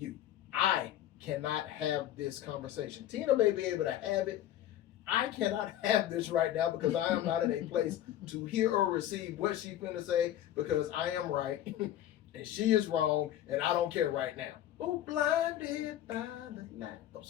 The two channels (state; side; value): quieter; right; 12.2 dB